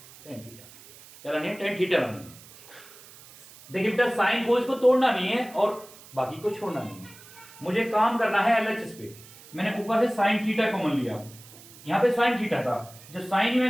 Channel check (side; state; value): right; noise; hiss, 21 dB below the sound